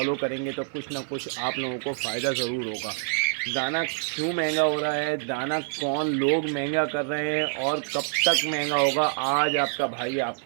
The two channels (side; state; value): left; silent; digital silence